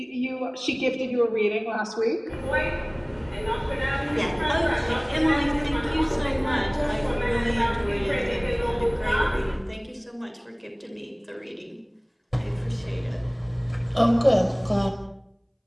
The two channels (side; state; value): both; identical; correlation 1.00